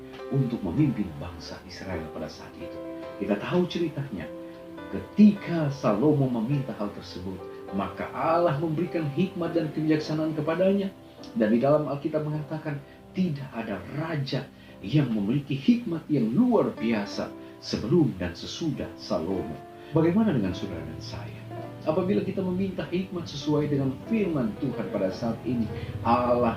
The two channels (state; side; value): identical; both; correlation 1.00